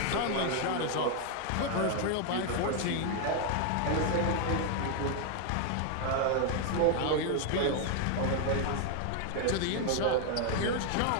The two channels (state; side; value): different; both; correlation 0.00